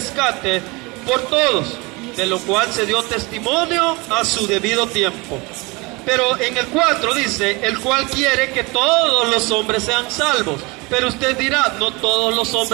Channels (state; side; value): quieter; left; 25.8 dB